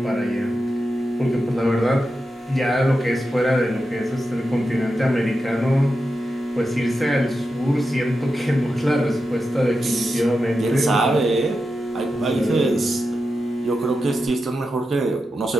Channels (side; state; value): both; normal; correlation 0.89